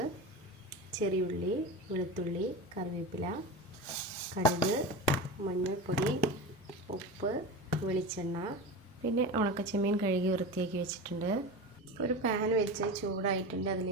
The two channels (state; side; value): normal; both; correlation 0.26